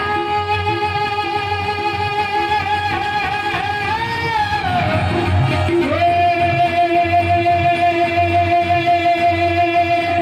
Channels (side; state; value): both; identical; correlation 1.00